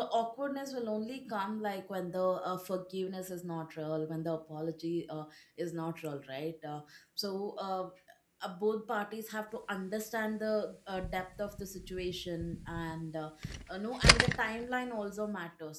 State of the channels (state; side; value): identical; both; correlation 1.00